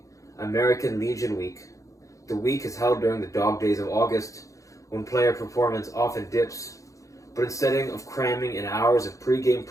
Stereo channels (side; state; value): right; late; 0.16 ms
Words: American Legion Week. The week is held during the dog days of August, when player performance often dips. But instead of cramming in hours of pre-game